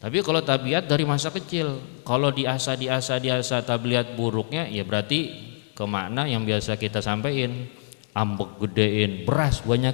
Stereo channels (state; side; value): silent; right; 62 dB below the other